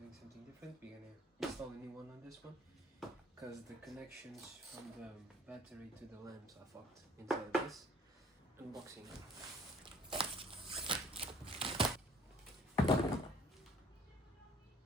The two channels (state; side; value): normal; both; correlation 0.55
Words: something different. We're gonna install a new one on this one because the connections from the battery to the lamps are fucked inside of this. Unboxing. The